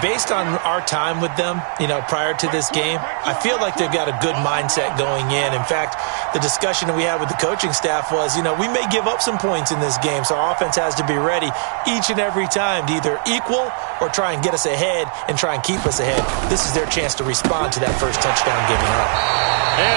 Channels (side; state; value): left; silent; digital silence